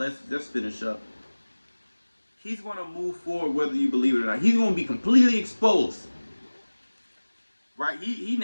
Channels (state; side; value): inverted; both; correlation -1.00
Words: finish up. He's going to move forward whether you believe it or not. He's going to be completely exposed. Right? He